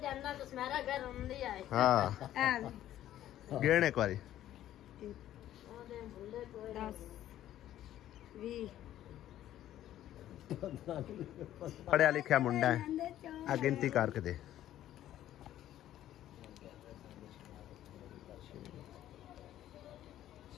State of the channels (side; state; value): right; quieter; 12.6 dB